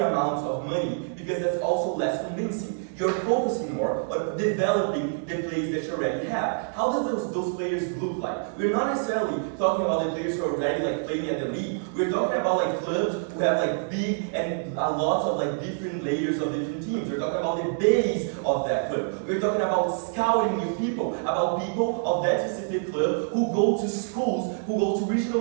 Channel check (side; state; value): left; silent; digital silence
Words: of money, because that's also less convincing. You're focusing more on developing the players that you already have. How does those players look like? We're not necessarily talking about the players who are already playing at the league. We're talking about clubs who have big and lots of different layers of different teams. We're talking about the base of that club. We're talking about scouting new people, about people of that specific club who go to schools, who go to